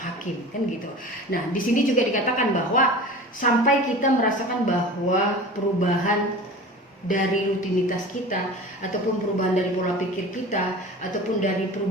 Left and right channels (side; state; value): both; normal; correlation 0.36